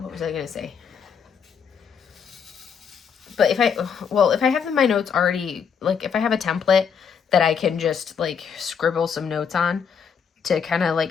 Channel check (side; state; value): right; quieter; 6.9 dB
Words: was I gonna say? But if I have my notes already, like if I have a template that I can just like scribble some notes on to kind of